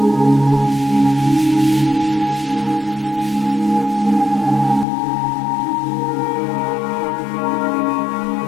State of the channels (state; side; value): drops out; right; at 4.9 s